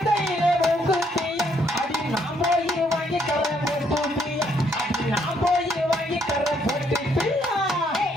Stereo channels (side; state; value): both; normal; correlation 0.70